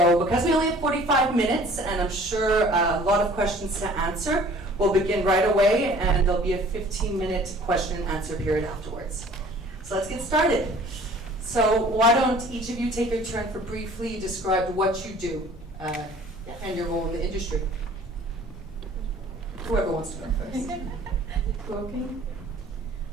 because we only have 45 minutes, and I'm sure a lot of questions to answer, we'll begin right away, and there'll be a 15-minute question and answer period afterwards. So let's get started. So why don't each of you take your turn for briefly describe what you do and your role in the industry. Whoever wants to go first. Is it working?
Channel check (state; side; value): normal; both; correlation 0.51